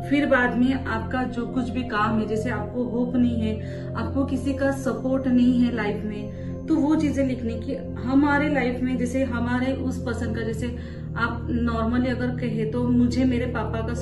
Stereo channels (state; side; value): identical; both; correlation 1.00